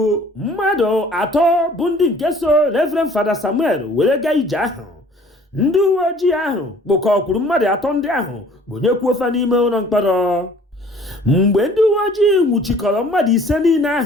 mmadụ 3 bụ ndị nke so Reverend Fada Samuel were gaa ije ahụ. Ndị uwe ojii ahụ kpụkọkwuru mmadụ 3 ndị ahụ gbonyekwuo fa n'ime ụlọ mkpọrọ. Mgbe ndị uwe ojii nwụchikọrọ mmadụ 5 niile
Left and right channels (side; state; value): both; normal; correlation 0.53